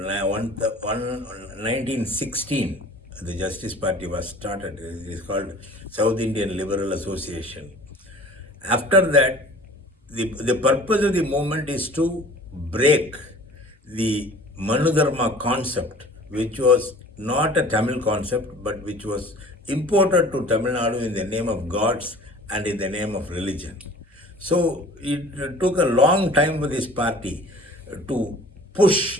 the Justice Party was started. It is called South Indian Liberal Association. After that, the purpose of the movement is to break the Manudharma concept, which was not a Tamil concept, but which was imported to Tamil Nadu in the name of gods and in the name of religion. So it took a long time for this party to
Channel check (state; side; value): normal; both; correlation 0.46